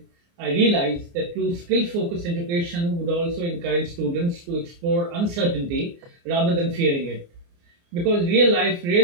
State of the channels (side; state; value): left; late; 29 ms